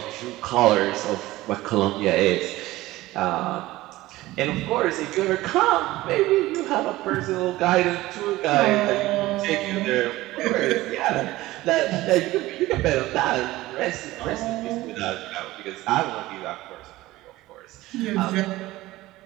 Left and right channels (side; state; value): left; quieter; 17.7 dB